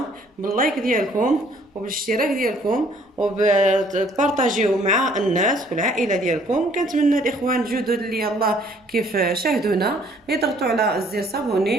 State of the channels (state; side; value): normal; both; correlation 0.60